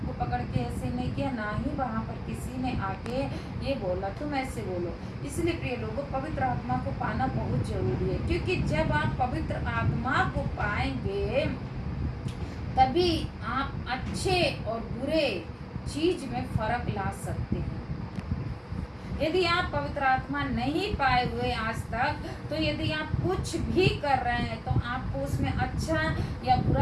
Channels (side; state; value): both; identical; correlation 1.00